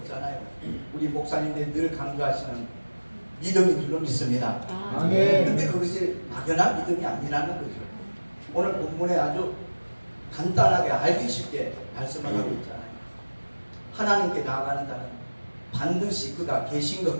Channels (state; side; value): inverted; both; correlation -1.00